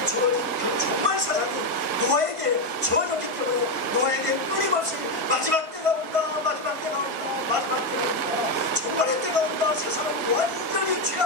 주어진 그 종말 사상이 노아에게 주어졌기 때문에 노아에게 끊임없이 마지막 때가 온다 마지막 때가 온다 마지막 때가 온다 종말의 때가 온다 세상은 완전히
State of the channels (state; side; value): late; left; 1.5 ms